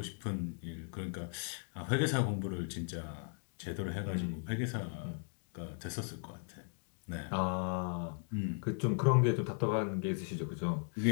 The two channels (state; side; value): silent; right; 53 dB below the other